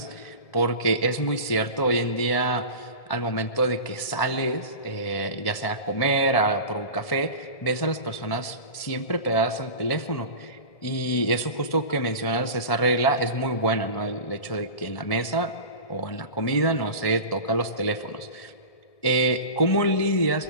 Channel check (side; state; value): right; late; 1.7 ms